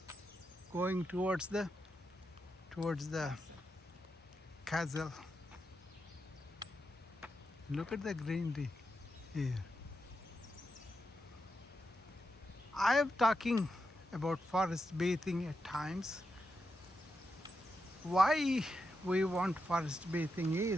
going towards the castle. Look at the greenery here. I am talking about forest bathing at times. Why we want forest bathing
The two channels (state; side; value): normal; both; correlation 0.86